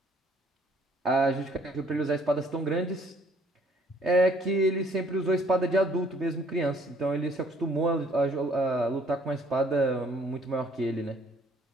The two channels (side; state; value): both; normal; correlation 0.61